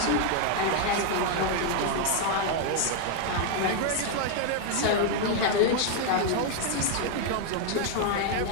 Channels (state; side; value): different; both; correlation 0.00